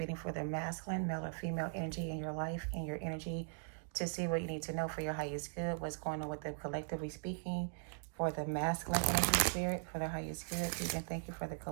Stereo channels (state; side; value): silent; left; digital silence